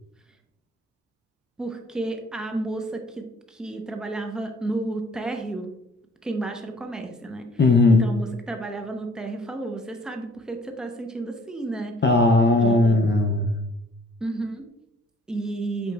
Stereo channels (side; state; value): both; normal; correlation 0.58